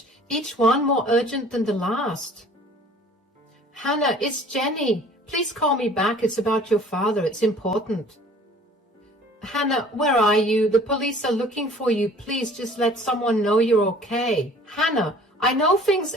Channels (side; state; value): both; normal; correlation 0.50